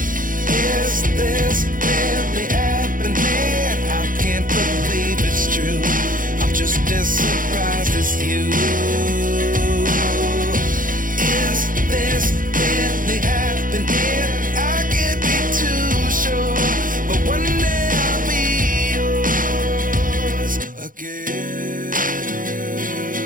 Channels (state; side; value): late; left; 0.40 ms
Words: Is this really happening? I can't believe it's true. I'm just as surprised as you. Is this really happening? I can't be too sure, but one day I'll be yours again.